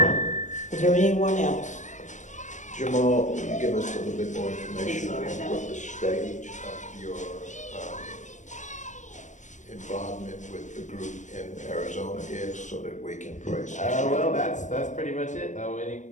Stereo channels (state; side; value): late; right; 0.35 ms